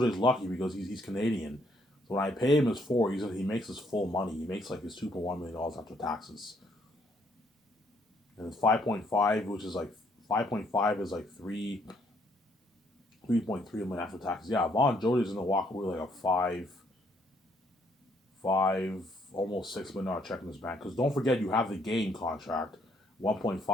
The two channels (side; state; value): both; normal; correlation 0.69